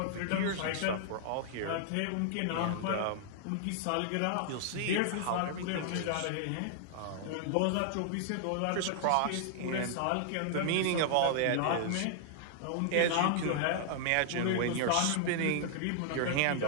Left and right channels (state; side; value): different; both; correlation -0.01